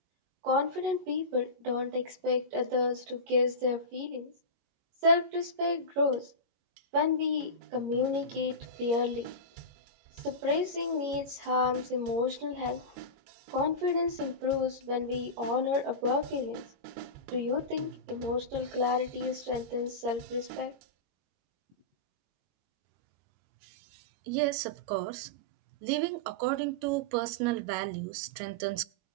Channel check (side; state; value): left; late; 21 ms